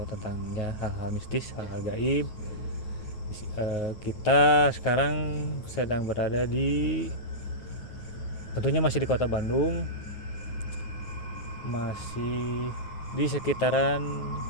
tentang ya, hal-hal mistis, hal-hal gaib. Kita sekarang sedang berada tentunya masih di kota Bandung, masih di sekitaran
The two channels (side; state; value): right; late; 9.4 ms